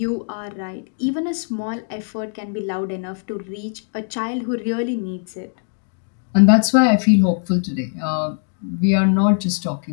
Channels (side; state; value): right; silent; digital silence